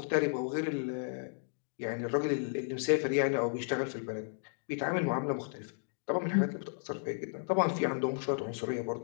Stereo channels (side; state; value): right; silent; digital silence